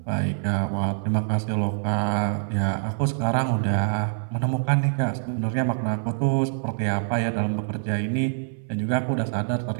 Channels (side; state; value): left; silent; 62 dB below the other